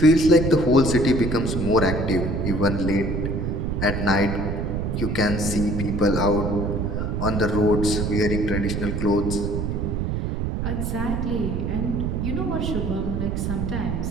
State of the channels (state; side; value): noise; right; rumble, 1 dB below the sound